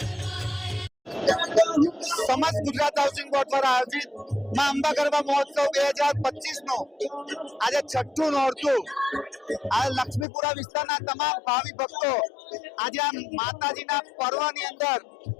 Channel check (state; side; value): drops out; right; at 10.2 s